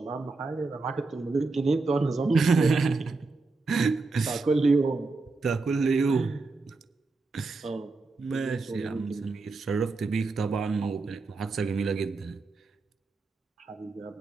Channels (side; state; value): left; quieter; 3.8 dB